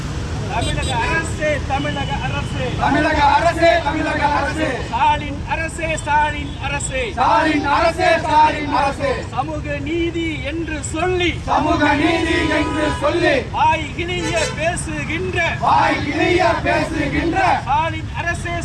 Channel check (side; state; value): both; identical; correlation 1.00